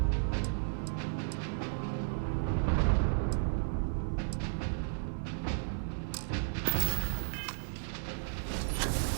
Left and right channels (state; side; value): silent; left; digital silence